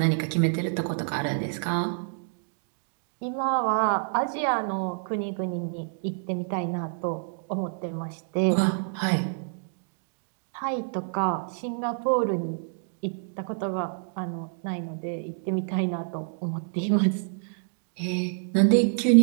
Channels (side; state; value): left; silent; digital silence